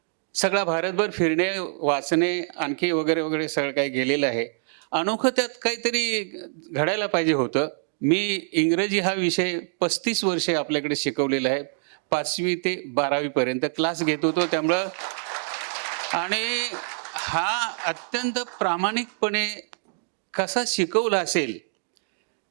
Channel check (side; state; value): left; silent; digital silence